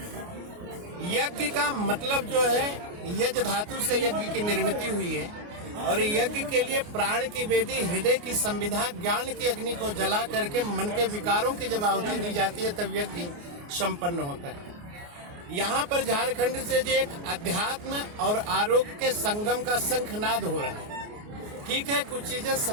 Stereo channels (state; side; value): late; left; 29 ms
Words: यज्ञ का मतलब जो है, यज्ञ धातु से यज्ञ की निर्मित हुई है और यज्ञ के लिए प्राण की वेदी, हृदय की संविधा, ज्ञान की अग्नि को जला करके मन के विकारों की जब आहुति दी जाती है तब यज्ञ संपन्न होता है। यहाँ पर झारखंड से जो एक अध्यात्म और आरोग्य के संगम का शंखनाद हो रहा है। ठीक है, कुछ चीजें